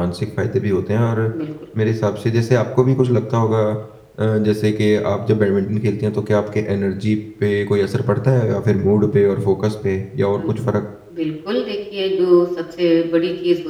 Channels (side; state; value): both; identical; correlation 1.00